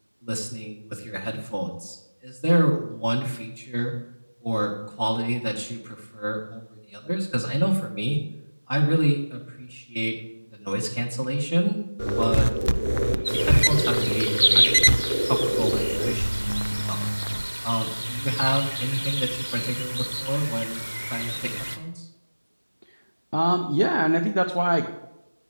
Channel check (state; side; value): inverted; both; correlation -1.00